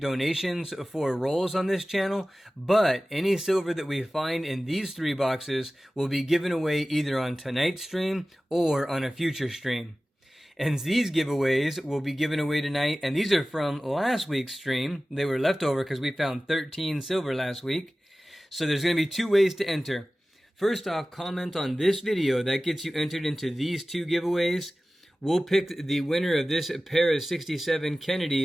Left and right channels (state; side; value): normal; both; correlation 0.97